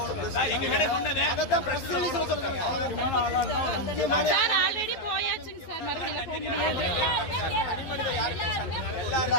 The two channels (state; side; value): late; right; 12 ms